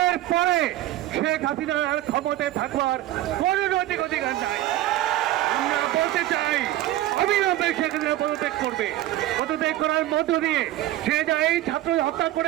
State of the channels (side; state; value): left; quieter; 14.6 dB